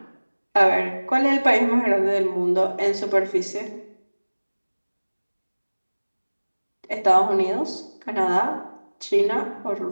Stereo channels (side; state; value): both; inverted; correlation -1.00